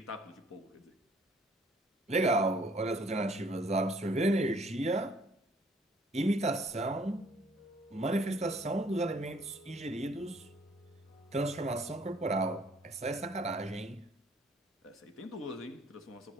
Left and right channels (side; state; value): both; normal; correlation 0.61